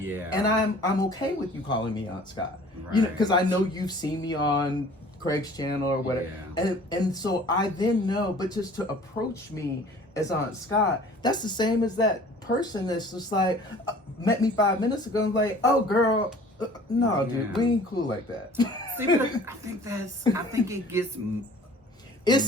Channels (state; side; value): normal; both; correlation 0.49